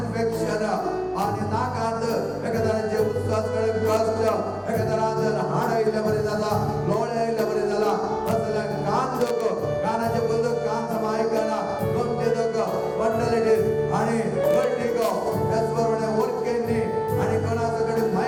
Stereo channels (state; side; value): identical; both; correlation 1.00